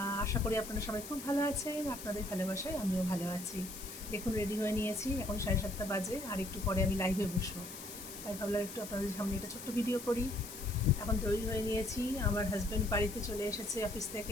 আশা করি আপনারা সবাই খুব ভালো আছেন। আপনাদের ভালোবাসায় আমিও ভালো আছি। দেখুন রেডি হয়ে নিয়েছি, এখন 7:30 বাজে, আর একটু পরে আমি লাইভে বসবো। তাই ভাবলাম একটু আপনাদের সামনে একটা ছোট্ট ভিডিও করি। এখন তৈরি হয়ে নিয়েছি, আমার হাজব্যান্ড বাড়িতে চলে এসেছে অফিস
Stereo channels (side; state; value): left; noise; hiss, 11 dB below the sound